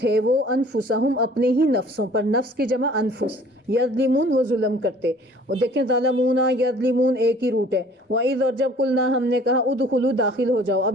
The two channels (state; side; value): normal; both; correlation 0.52